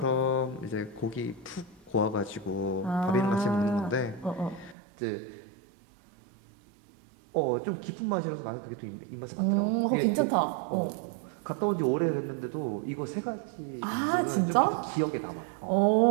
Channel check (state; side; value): drops out; left; at 4.8 s